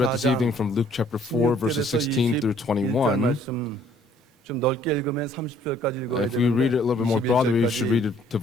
this evening from Luke chapter 4, verses 16 through 21, 좀 넓게 읽으면 30절까지 읽어야 if we read it a little bit more broadly, we should read it to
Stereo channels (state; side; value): normal; both; correlation 0.60